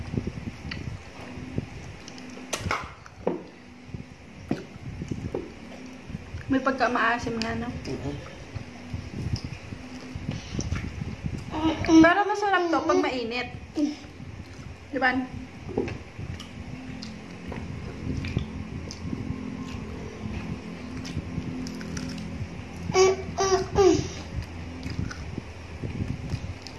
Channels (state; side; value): identical; both; correlation 1.00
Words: May pagka-maasim nga, no? Pero masarap to pag mainit. Di ba?